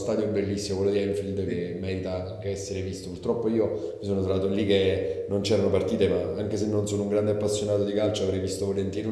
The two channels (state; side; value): identical; both; correlation 1.00